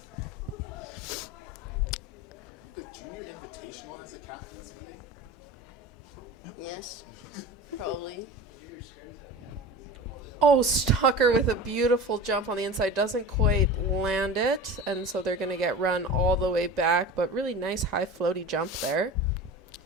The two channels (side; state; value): both; normal; correlation 0.33